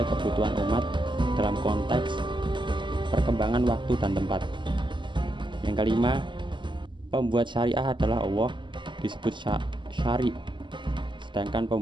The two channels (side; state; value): left; late; 0.23 ms